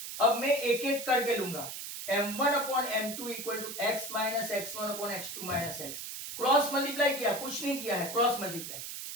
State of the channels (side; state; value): right; noise; hiss, 8 dB below the sound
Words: अब मैं एक एक करके लूंगा, M1 upon M2 equal to X minus X1 upon X2 minus X। Cross multiply किया, कुछ नहीं किया है, cross multiply,